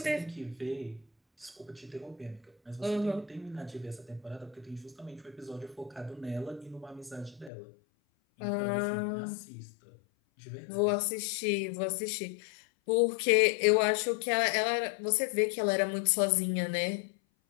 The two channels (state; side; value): drops out; right; at 7.5 s